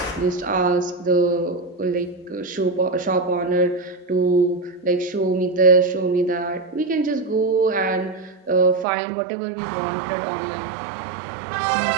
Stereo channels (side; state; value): left; drops out; at 8.8 s